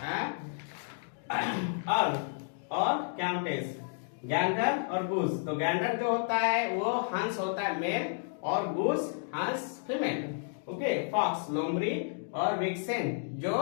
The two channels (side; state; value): right; silent; digital silence